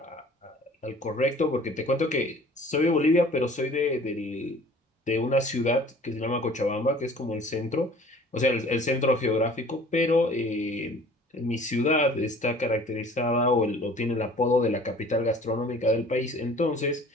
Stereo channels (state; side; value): normal; both; correlation 0.49